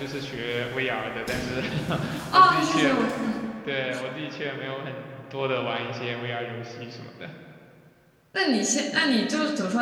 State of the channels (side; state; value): both; identical; correlation 1.00